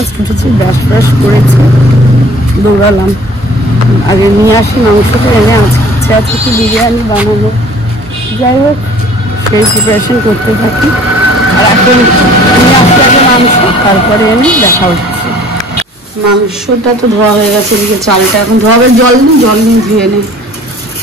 উঠেছি ব্রাশ ব্রাশ করেছি দৌড়ালাম আগে নিয়ে আসি মাংসটা এনে আজকে আছে কি বিরিয়ানি বানাবো যাই হোক সেই প্রিপারেশন করতে থাকি আর এখন নিয়ে আসতে আগে মাংস তারপরে এনে দেখা হচ্ছে মাংসটা তো ধোয়া হয়ে গেছে এদিকে চালটা এখন ধোয়াবে জল নিয়ে ধুয়ে নেই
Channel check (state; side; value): normal; both; correlation 0.50